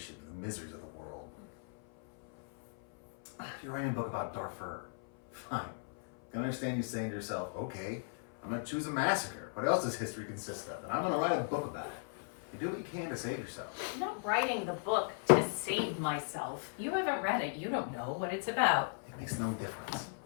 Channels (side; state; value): right; silent; 53 dB below the other